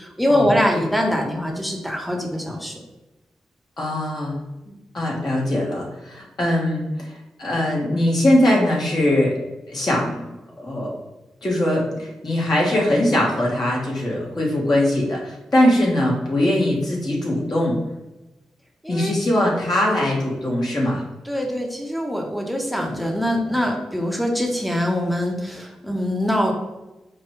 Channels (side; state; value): both; normal; correlation 0.87